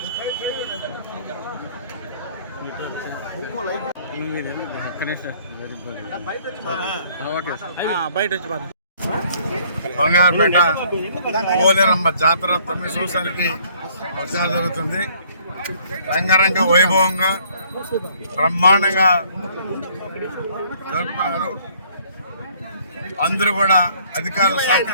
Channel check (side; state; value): both; inverted; correlation -0.60